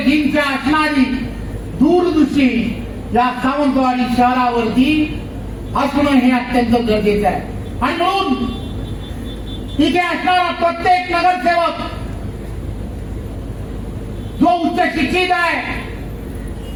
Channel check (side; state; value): both; identical; correlation 1.00